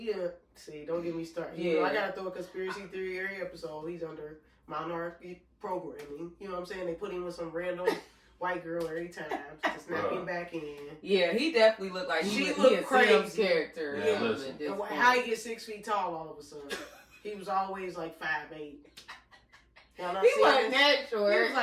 see, don't get me started. Yeah. I got to throw a conspiracy theory every episode. He's under minority programming. You know what I'm saying? They put him with some random... white girl every time to snap him back in. Yeah, he definitely looked like he a crazy character. Yeah, how he get 6 feet tall all of a sudden? He was always like 5'8". He wasn't that short. He was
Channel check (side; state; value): both; identical; correlation 1.00